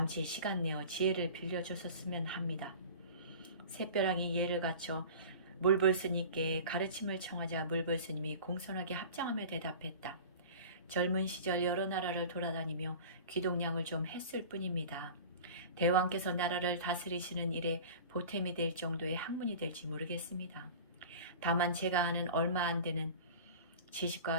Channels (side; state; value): both; inverted; correlation -0.38